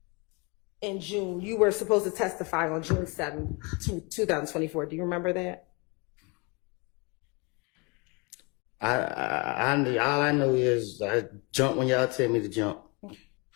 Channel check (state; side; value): quieter; right; 30.2 dB